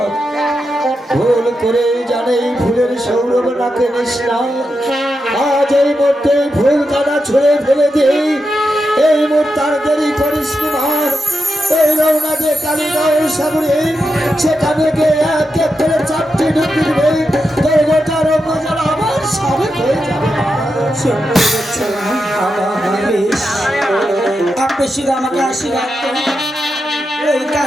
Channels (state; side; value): normal; both; correlation 0.87